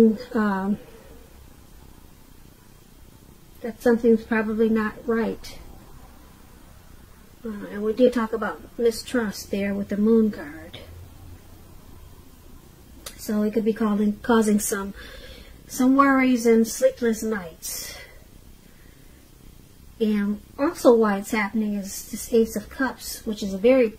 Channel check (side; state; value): both; identical; correlation 1.00